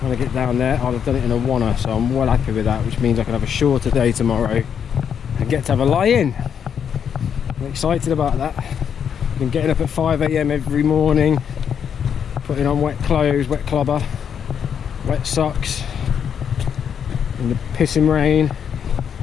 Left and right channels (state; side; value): quieter; right; 7.9 dB